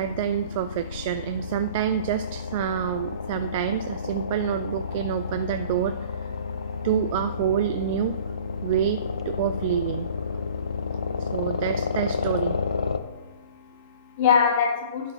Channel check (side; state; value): both; inverted; correlation -0.47